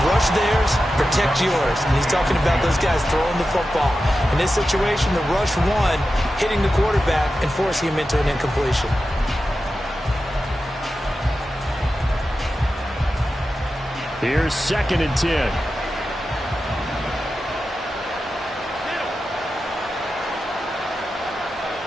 Rush theirs, protect yours. And he's talking about those guys throwing the football. In this situation, the rush won, hitting the quarterback and forcing him into an incompletion. Here's 2nd and 10.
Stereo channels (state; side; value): normal; both; correlation 0.92